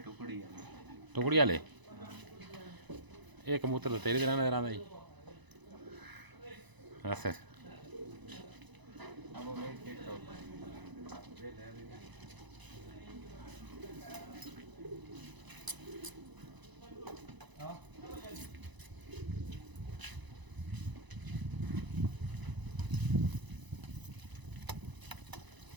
ਵਾਲੇ ਇਹ ਕਬੂਤਰ ਤਾਂ ਤੇਰੇ ਤਰ੍ਹਾਂ ਨਜ਼ਰ ਆਉਂਦਾ ਜੀ ਅੱਛਾ अब वो वेट चेक करो वेट है हाँ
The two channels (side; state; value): left; late; 1.0 ms